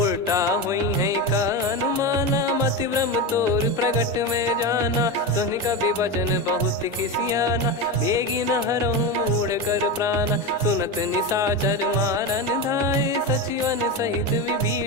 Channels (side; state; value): both; normal; correlation 0.18